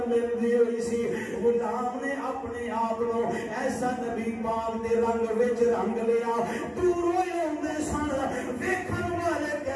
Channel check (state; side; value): identical; both; correlation 1.00